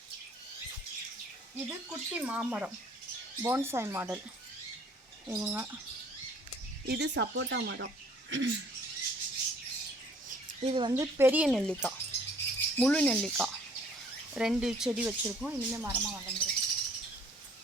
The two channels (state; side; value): normal; both; correlation 0.57